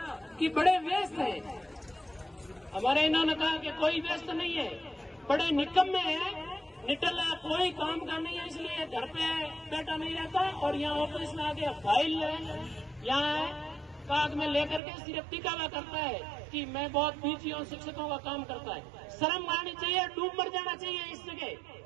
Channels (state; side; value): drops out; left; at 14.8 s